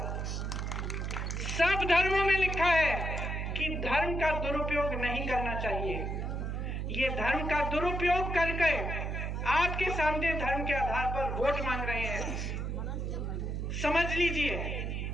सब धर्मों में लिखा है कि धर्म का दुरुपयोग नहीं करना चाहिए। ये धर्म का दुरुपयोग करके आपके सामने धर्म के आधार पर वोट मांग रहे हैं। समझ लीजिए,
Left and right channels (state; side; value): noise; right; hum, 2 dB below the sound